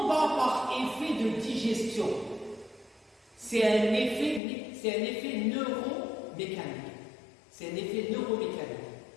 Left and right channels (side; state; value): right; drops out; at 4.4 s